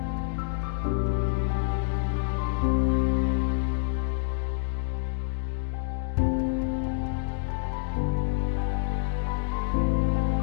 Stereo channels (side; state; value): right; silent; digital silence